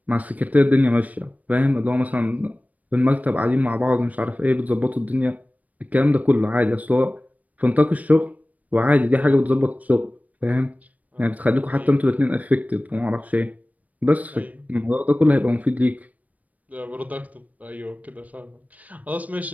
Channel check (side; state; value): left; late; 0.073 ms